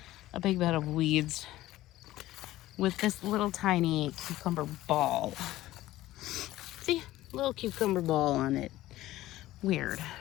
a big bed of weeds with this little tiny cucumber ball. See, little cucumber ball on it. Weird,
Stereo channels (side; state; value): right; quieter; 15.8 dB